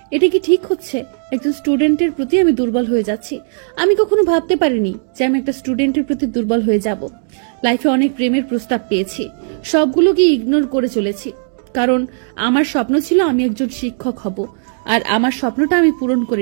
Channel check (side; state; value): left; silent; digital silence